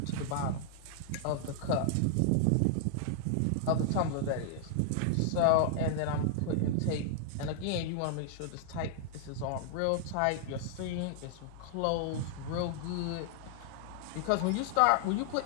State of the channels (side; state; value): both; different; correlation -0.01